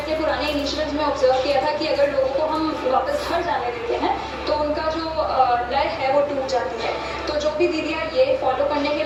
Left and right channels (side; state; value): both; identical; correlation 1.00